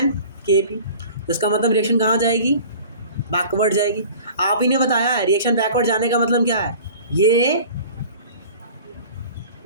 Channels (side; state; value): both; inverted; correlation -0.44